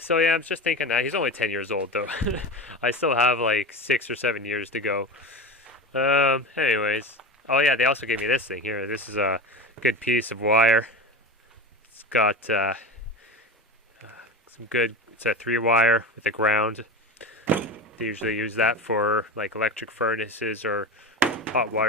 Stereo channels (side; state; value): both; normal; correlation 0.25